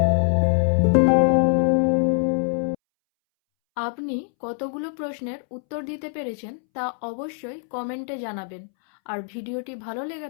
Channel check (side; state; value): right; silent; 63 dB below the other